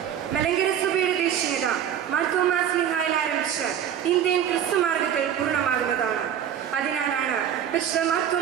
മലങ്കര സഭയുടെ ദേശീയത മാർത്തോമാ സ്ലീഹായിൽ ആരംഭിച്ച് ഇന്ത്യൻ ക്രിസ്തുമാർഗത്തിൽ പൂർണ്ണമാകുന്നതാണ്. അതിനാലാണ് പരിശുദ്ധ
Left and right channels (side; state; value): left; quieter; 9.4 dB